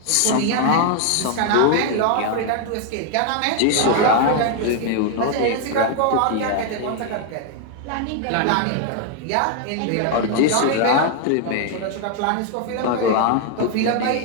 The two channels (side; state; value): both; different; correlation 0.00